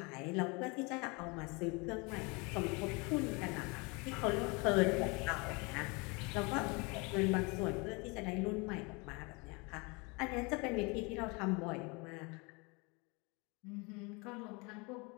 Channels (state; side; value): quieter; right; 28.7 dB